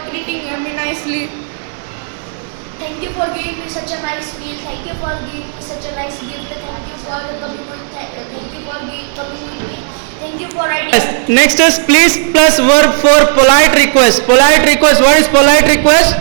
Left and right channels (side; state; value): left; silent; digital silence